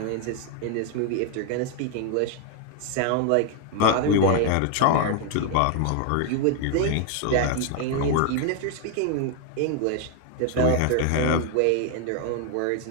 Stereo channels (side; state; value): both; different; correlation 0.01